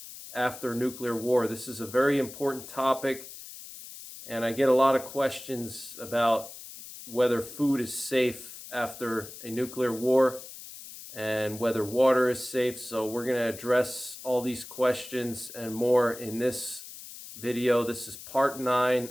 after nuclear war. This is a very important topic, and I get a lot of questions about whether food is safe after a nuclear war and whether water is safe. So we're going to address all these questions and more in this video. This is part 9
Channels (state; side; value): noise; left; hiss, 14 dB below the sound